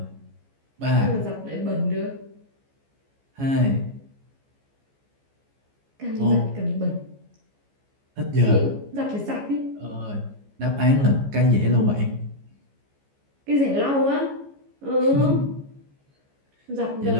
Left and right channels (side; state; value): left; late; 14 ms